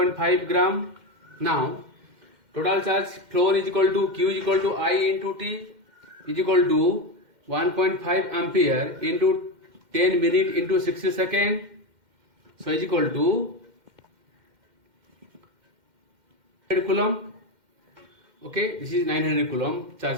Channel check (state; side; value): late; left; 2.1 ms